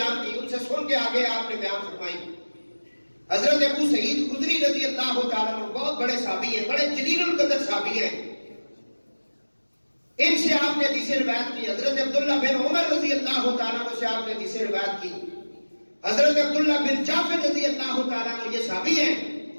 کی، ان سے سن کے آگے آپ نے بیان فرمائی. حضرت ابو سعید خدری رضی اللہ تعالیٰ عنہ بہت بڑے صحابی ہیں، بڑے جلیل القدر صحابی ہیں، ان سے آپ نے حدیثیں روایت کی. حضرت عبداللہ بن عمر رضی اللہ تعالیٰ عنہ سے آپ نے حدیثیں روایت کی. حضرت عبداللہ بن جعفر رضی اللہ تعالیٰ عنہ یہ صحابی ہیں،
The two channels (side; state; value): both; inverted; correlation -1.00